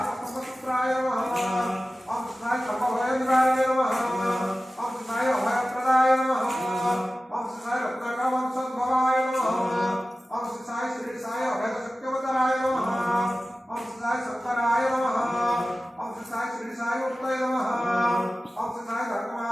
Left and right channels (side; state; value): both; normal; correlation 0.95